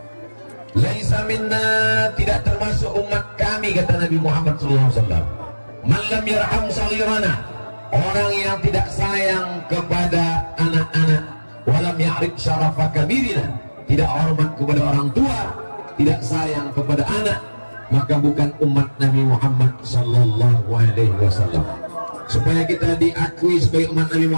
Laisa minna, tidak termasuk umat kami, kata Nabi Muhammad SAW. Man lam yarham saghirana, orang yang tidak sayang kepada anak-anak, walam ya'rif syarafa kabirina, tidak hormat kepada orang tua, tidak sayang kepada anak, maka bukan umat Nabi Muhammad sallallahu alaihi wasallam. Supaya kita diakui sebagai umat Nabi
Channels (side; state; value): both; inverted; correlation -1.00